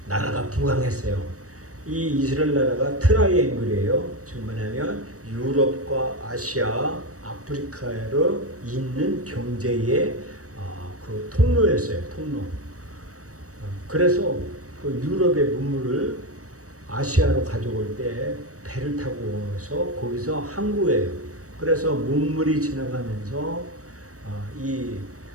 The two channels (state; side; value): late; left; 0.65 ms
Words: 나라가 부강했어요. 이 이스라엘 나라가 트라이앵글이에요. 지금 뭐냐면 유럽과 아시아, 아프리카로 있는 경제의 그 통로였어요. 통로. 그래서 그 유럽의 문물을 아시아로 가져올 때 배를 타고 해서 거기서 항구예요. 그래서 문물이 지나가면서